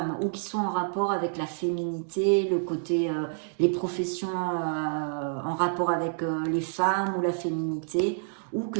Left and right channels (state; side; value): silent; left; 59 dB below the other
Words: ou qui soient en rapport avec la féminité, le côté, les professions en rapport avec les femmes ou la féminité, ou